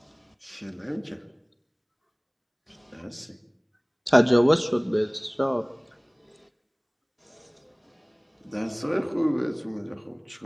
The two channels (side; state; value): both; identical; correlation 1.00